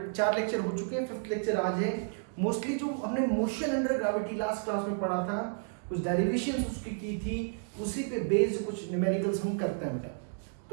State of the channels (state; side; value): silent; left; digital silence